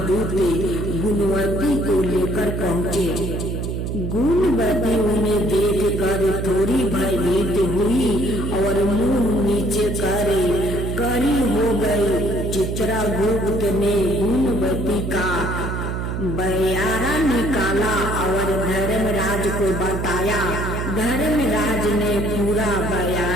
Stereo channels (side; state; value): right; noise; hum, 3 dB below the sound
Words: गुणवती को लेकर पहुँचे। गुणवती उन्हें देख कर थोड़ी भयभीत हुई और मुंह नीचे करे करी हो गई। चित्रगुप्त ने गुणवती का बयारा निकाला और धर्मराज को बताया। धर्मराज ने पूरा